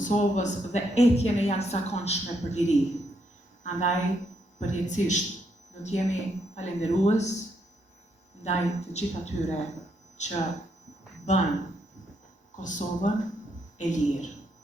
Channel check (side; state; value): both; normal; correlation 0.76